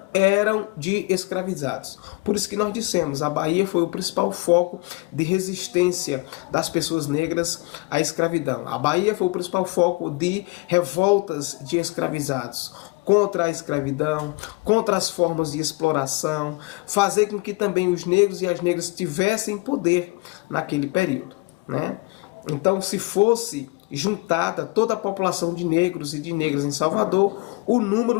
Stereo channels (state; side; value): quieter; right; 26.0 dB